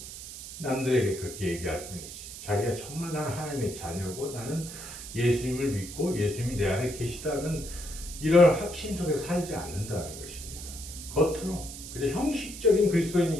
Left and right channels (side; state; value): right; noise; hiss, 11 dB below the sound